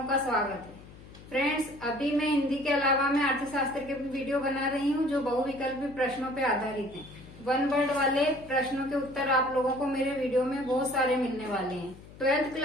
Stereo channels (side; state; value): left; noise; hum, 19 dB below the sound